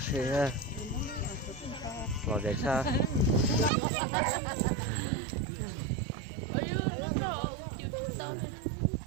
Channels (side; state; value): left; drops out; at 3.7 s